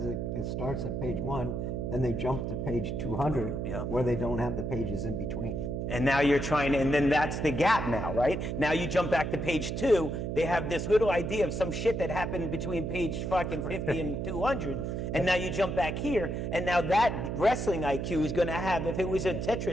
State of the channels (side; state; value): right; noise; hum, 2 dB below the sound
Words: it starts at page 1, then they jump to page 200, Yeah. where they don't have the pages in between. and now you're trying to, and then that's the gap now, right? Now you jump back to page 2, they have this little idea of some shit that happened between page fucking 50 and 200, and now you jump back here, and now that wrestling IQ is gonna have, if it was a